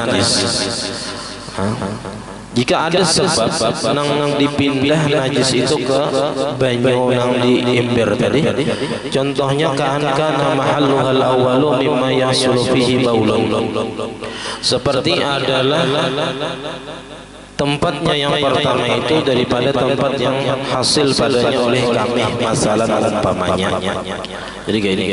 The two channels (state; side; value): identical; both; correlation 1.00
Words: Jika ada sebab nang dipindah najis itu ke banyu nang di ember tadi, contohnya kana mahalluhal awwalu mimma yahsulu fihi baulun, seperti adalah tempatnya yang pertama itu daripada tempat yang hasil padanya oleh kami, masalah umpamanya. Jadi gini,